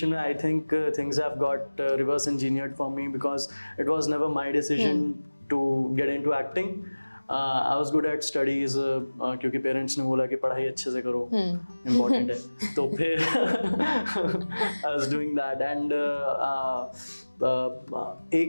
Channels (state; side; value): inverted; both; correlation -1.00